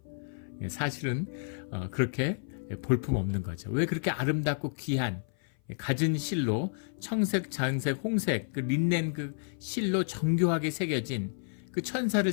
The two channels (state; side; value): silent; right; 56 dB below the other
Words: 사실은 그렇게 볼품 없는 거죠. 왜 그렇게 아름답고 귀한 갖은 실로 청색, 장색, 홍색 그 린넨 그 실로 정교하게 새겨진 그 천사를